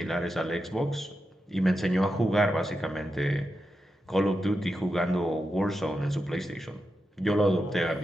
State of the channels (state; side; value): normal; both; correlation 0.88